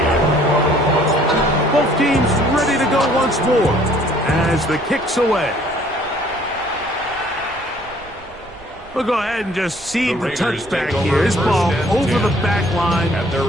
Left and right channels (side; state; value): right; noise; rumble, 22 dB below the sound